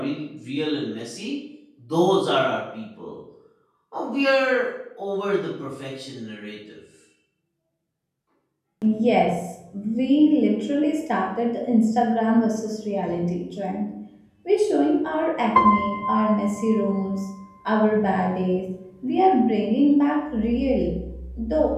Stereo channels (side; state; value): both; identical; correlation 1.00